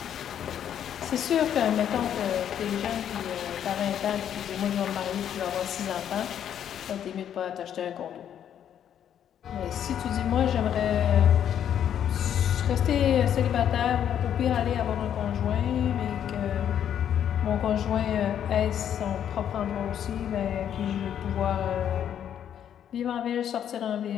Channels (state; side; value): quieter; right; 9.6 dB